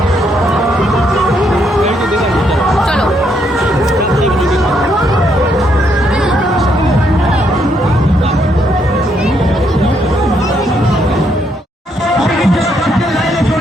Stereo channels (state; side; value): normal; both; correlation 0.74